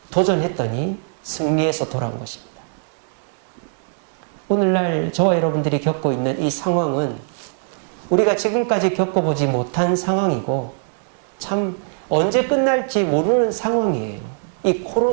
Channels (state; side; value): silent; left; 65 dB below the other